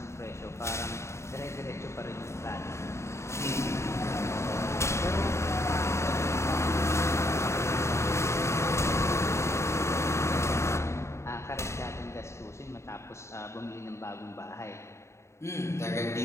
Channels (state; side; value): late; right; 0.13 ms